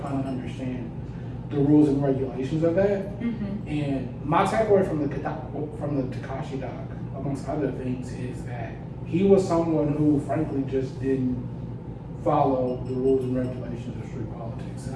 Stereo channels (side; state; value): both; identical; correlation 1.00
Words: of understand the rules and regulations of that. Mm-hmm. And my takeaway from the Takashi doc, amongst other things, is that he was someone who, frankly, just didn't follow the rules and regulations of street politics, and